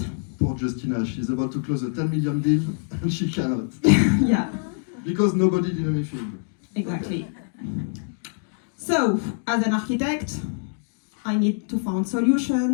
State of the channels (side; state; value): right; silent; 59 dB below the other